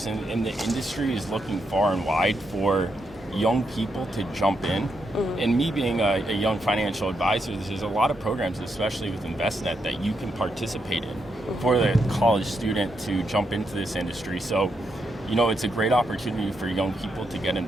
and the industry is looking far and wide for young people to jump in. Mm-hmm. And me being a young financial advisor, there's a lot of programs, especially with InvestNet, that you can participate in for the college student to jump into this industry. So, it's a great opportunity for young people to get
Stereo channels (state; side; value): normal; both; correlation 0.81